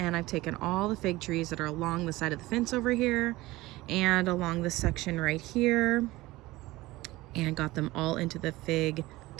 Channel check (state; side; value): quieter; left; 19.2 dB